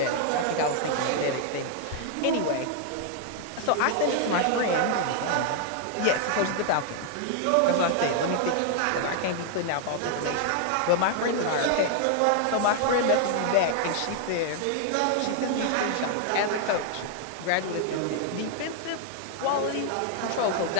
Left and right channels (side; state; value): both; different; correlation 0.00